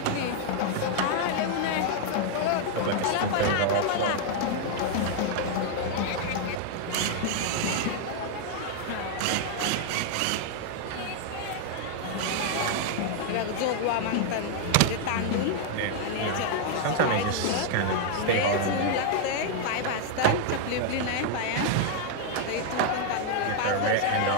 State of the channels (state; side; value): different; both; correlation 0.00